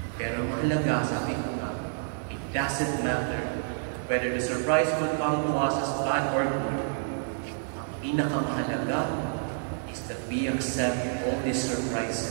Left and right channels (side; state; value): left; silent; digital silence